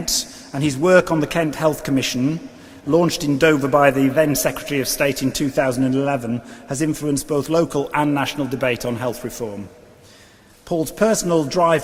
and his work on the Kent Health Commission, launched in Dover by the then Secretary of State in 2011, has influenced both local and national debate on health reform. Paul's personal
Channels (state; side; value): identical; both; correlation 1.00